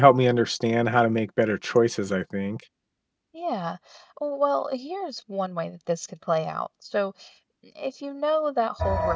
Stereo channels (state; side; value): identical; both; correlation 1.00